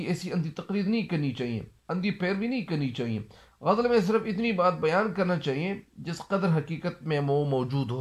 ایسی اندھی تقلید نہیں کرنی چاہیے، اندھی پیروی نہیں کرنی چاہیے۔ غزل میں صرف اتنی بات بیان کرنا چاہیے جس قدر حقیقت میں وہ موجود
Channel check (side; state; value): both; identical; correlation 1.00